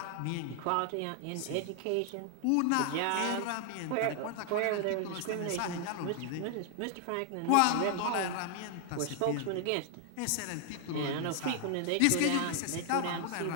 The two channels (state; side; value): different; both; correlation 0.00